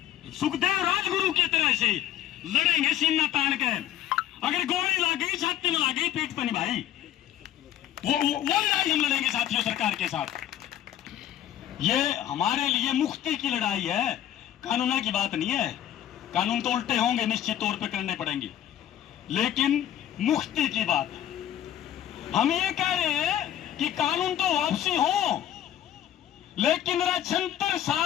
सुखदेव राजगुरु की तरह से लड़ेंगे सीना तान के। अगर गोली लग गई, छाती में लग गई, पीठ पर नहीं भाई, वो लड़ाई हम लड़ेंगे साथियों सरकार के साथ। ये हमारे लिए मुक्ति की लड़ाई है, कानून की बात नहीं है। कानून तो उल्टे होंगे, निश्चित तौर पे करने पड़ेंगे, लेकिन मुक्ति की बात है। हम ये कह रहे हैं कि कानून तो वापसी हो, लेकिन 76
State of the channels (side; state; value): right; quieter; 11.6 dB